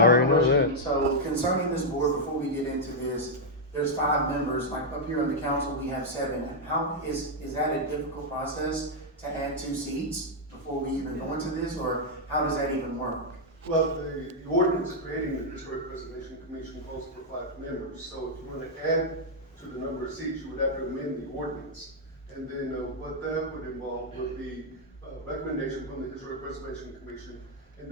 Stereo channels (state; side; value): normal; both; correlation -0.03